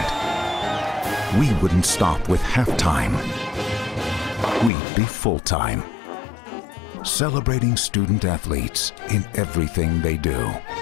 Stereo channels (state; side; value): drops out; right; at 4.7 s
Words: We wouldn't stop with halftime. We'd be full-time, celebrating student athletes in everything they do.